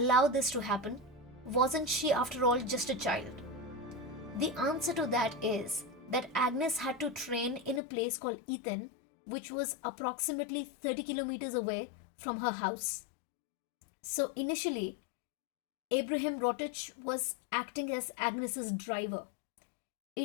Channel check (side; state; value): right; drops out; at 7.8 s